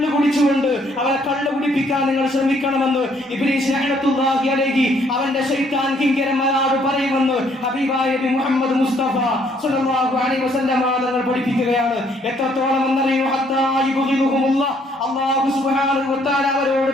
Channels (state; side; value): normal; both; correlation 0.66